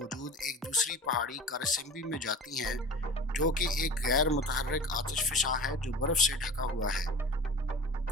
एक दूसरी पहाड़ी कारसिम्बी में जाती हैं, जो कि एक गैर मुतहर्रिक आतिश फ़िशां है जो बर्फ़ से ढका हुआ है।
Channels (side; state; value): both; normal; correlation 0.37